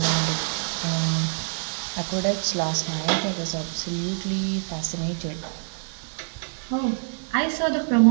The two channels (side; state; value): left; silent; 59 dB below the other